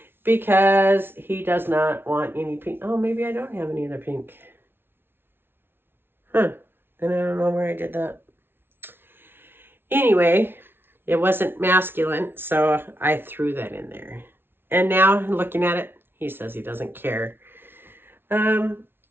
because he does not want any pink. Oh, maybe I don't have any other pink. Huh. And I don't know where I did that. Anyway, it wasn't masculine, so I threw that in there. And now, looking at it, he says he doesn't care.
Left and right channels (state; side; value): late; left; 0.11 ms